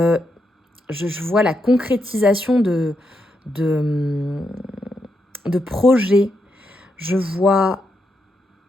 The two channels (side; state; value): both; normal; correlation 0.82